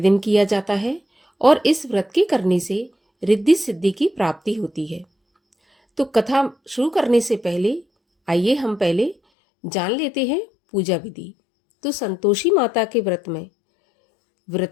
किया जाता है और इस व्रत के करने से रिद्धि सिद्धि की प्राप्ति होती है। तो कथा शुरू करने से पहले आइए हम पहले जान लेते हैं पूजा विधि। तो संतोषी माता के व्रत में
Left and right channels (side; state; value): right; drops out; at 9.2 s